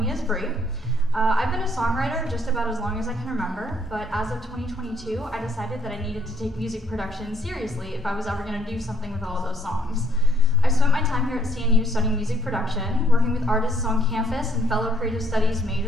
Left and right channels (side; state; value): both; normal; correlation 0.68